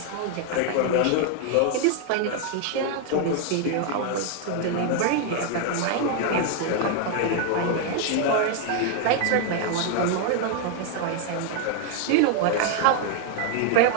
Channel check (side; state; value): both; different; correlation 0.00